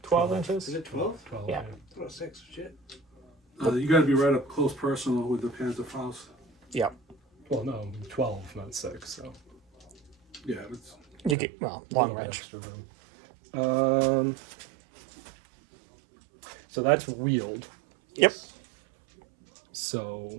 12 inches. Is it 12? 12. Yeah. Oh, 6, shit. You gotta be right up close personal with the Panzerfaust. Yep. Well, no, 12, not 6. So Yeah, it's You get, well, long little range. extra room. So that's wheeled. Yep. So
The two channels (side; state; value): left; drops out; at 11.4 s